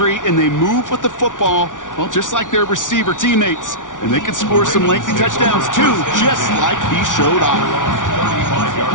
and they move with the football, well, just like their receiver teammates. And they can score some lengthy touchdowns, too, just like he showed off. 35-yard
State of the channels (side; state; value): right; late; 0.87 ms